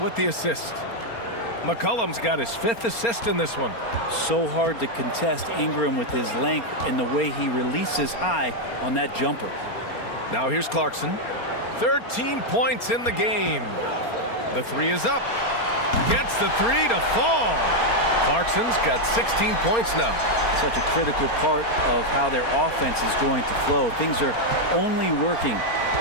with the assist. McCollum's got his 5th assist in this one. So hard to contest Ingram with his length and the way he releases high on that jumper. Now here's Clarkson. 13 points in the game. The 3 is up. Gets the three to fall. Clarkson's got 16 points now. Such a critical part of how their offense is going to flow. Things are only working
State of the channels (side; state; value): right; late; 4.3 ms